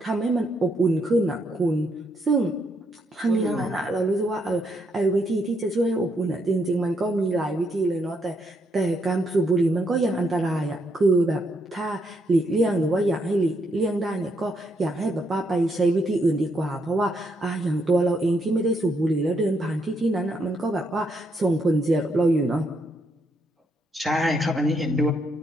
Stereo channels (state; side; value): normal; both; correlation 0.76